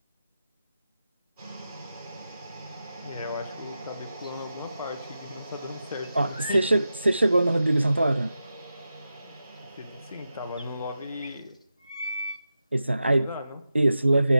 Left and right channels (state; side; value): inverted; both; correlation -0.90